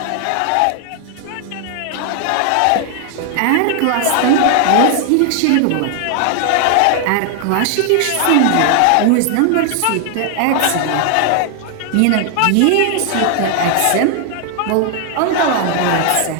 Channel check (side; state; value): both; different; correlation 0.00